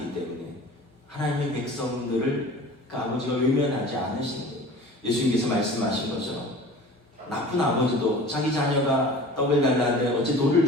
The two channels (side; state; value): both; normal; correlation 0.41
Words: 때문에 하나님의 백성들을 그 아버지가 외면하지 않으신 거예요. 예수님께서 말씀하신 것처럼 나쁜 아버지도 자기 자녀가 떡을 달라는데 어찌 돌을